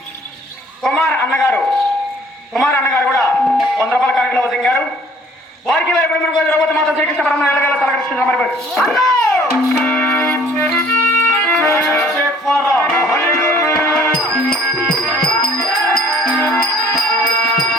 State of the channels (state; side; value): normal; both; correlation 0.56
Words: కుమార్ అన్నగారు కూడా 100 రూపాయల కానుకలో వదిలింగారు. వారికి ద్రౌపది మాత శ్రీకృష్ణ పరమ తలకృష్ణ